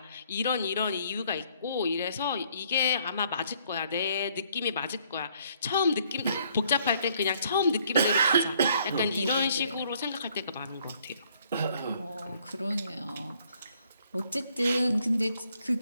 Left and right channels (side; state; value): both; inverted; correlation -0.65